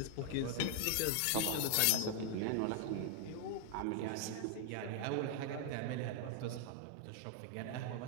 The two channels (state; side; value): different; both; correlation 0.00